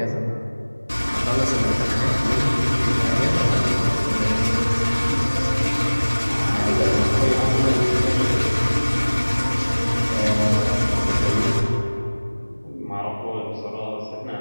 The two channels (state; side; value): inverted; both; correlation -1.00